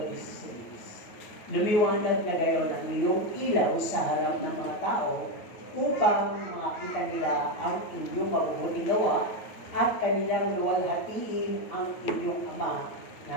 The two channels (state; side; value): late; right; 9.2 ms